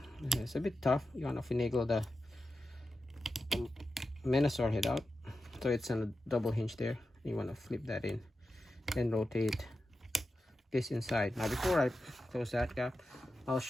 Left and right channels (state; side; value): normal; both; correlation 0.91